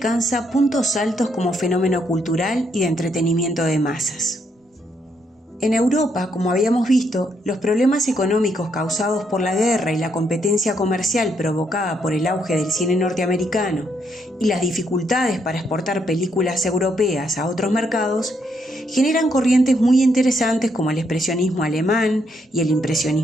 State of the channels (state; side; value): normal; both; correlation 0.75